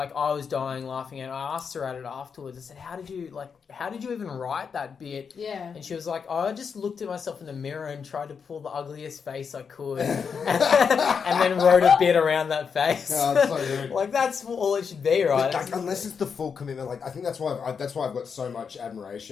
I was dying laughing, and I asked her at it afterwards. I said, how did you even write that bit? Yeah. And she was like, I just looked at myself in the mirror and tried to pull the ugliest face I could and then wrote a bit around that face. Oh, that's so good. Like, that's all it should be, right? But, like, unless it's the full commitment, like, I think that's why I've got so much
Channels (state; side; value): quieter; right; 6.2 dB